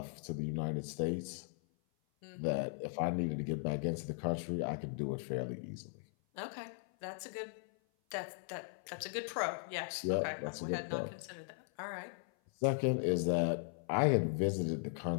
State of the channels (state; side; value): silent; right; 52 dB below the other